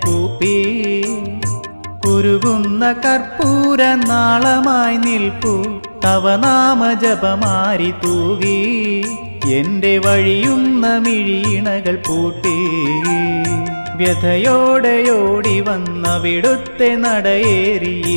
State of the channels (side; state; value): both; inverted; correlation -1.00